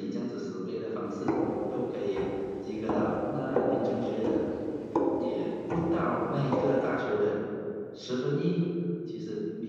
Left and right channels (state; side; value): identical; both; correlation 1.00